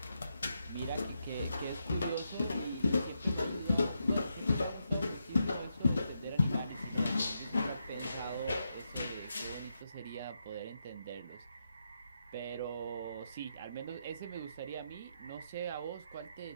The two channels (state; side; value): inverted; both; correlation -0.83